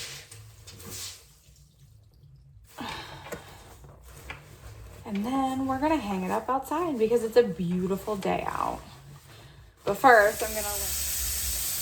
And then we're gonna hang it up outside because it's a beautiful day out. But first, I'm gonna...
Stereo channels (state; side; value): identical; both; correlation 1.00